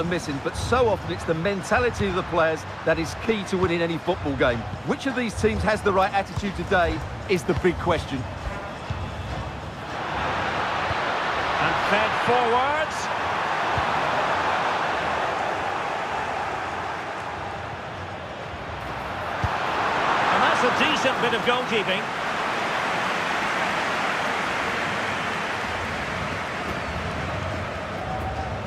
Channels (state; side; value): identical; both; correlation 1.00